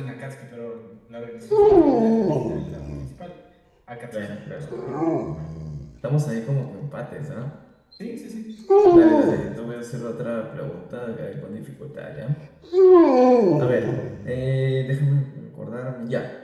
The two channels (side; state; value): both; identical; correlation 1.00